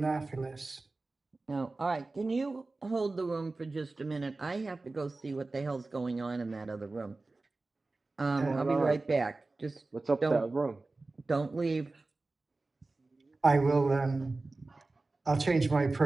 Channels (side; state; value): left; quieter; 3.4 dB